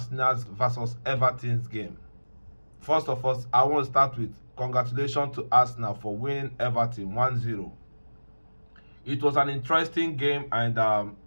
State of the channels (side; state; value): both; inverted; correlation -1.00